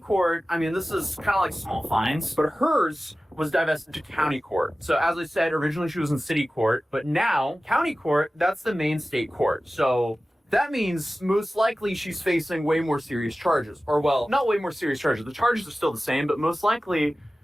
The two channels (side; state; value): both; normal; correlation 0.96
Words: this is kind of like small fines, but hers was divested to county court. So as I said, originally she was in city court, but now county court, that's the main state court. So that means most likely she's facing way more serious charges. Or well, not way more serious charges. The charges are still the same, but most likely